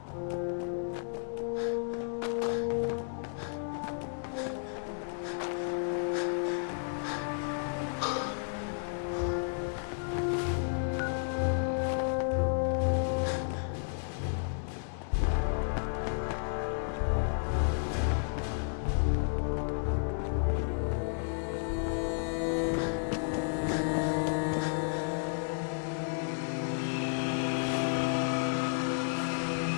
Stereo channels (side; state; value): right; silent; digital silence